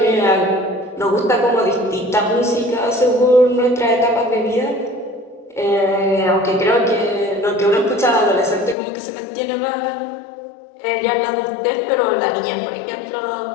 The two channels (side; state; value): right; drops out; at 8.8 s